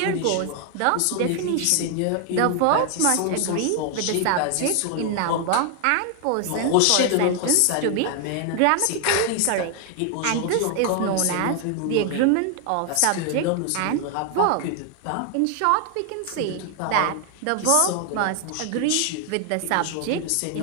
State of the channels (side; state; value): both; different; correlation 0.00